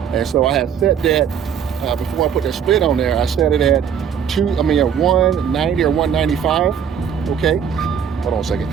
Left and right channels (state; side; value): quieter; left; 7.9 dB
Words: and so I had set that before I put that split on there. I set it at 190 or 195. Okay, hold on a second.